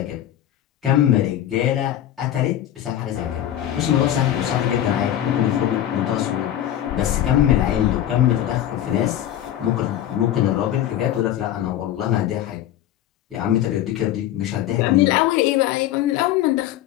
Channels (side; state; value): right; quieter; 11.9 dB